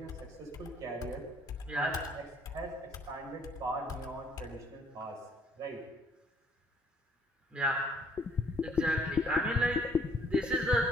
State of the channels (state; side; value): normal; both; correlation 0.63